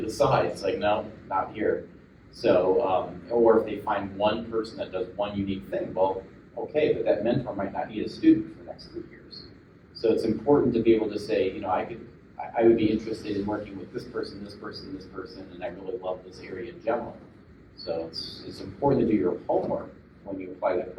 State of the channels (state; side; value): identical; both; correlation 1.00